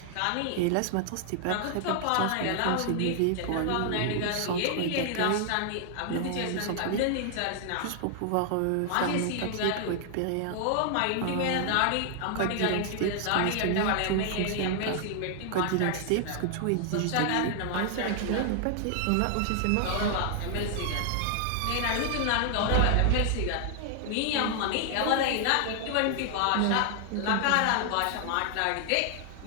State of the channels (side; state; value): both; different; correlation 0.00